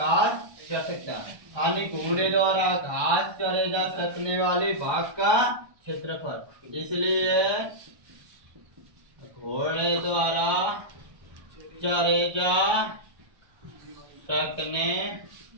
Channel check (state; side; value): late; left; 1.2 ms